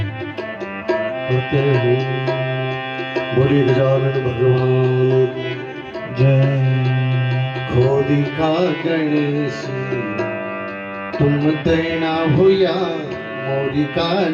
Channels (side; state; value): both; identical; correlation 1.00